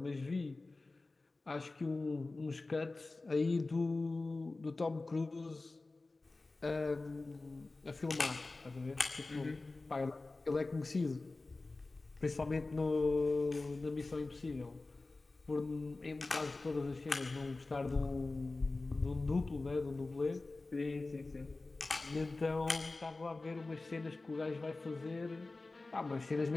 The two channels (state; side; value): quieter; right; 3.3 dB